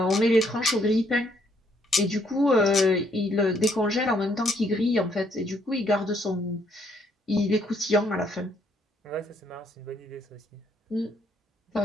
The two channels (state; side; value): normal; both; correlation 0.70